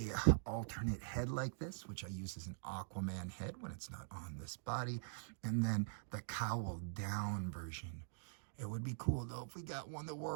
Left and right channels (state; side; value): silent; left; digital silence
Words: alternate head like this, which I use as an Aquaman head when it's not on this body. And then the cowl down version. It would be cool though if we got one that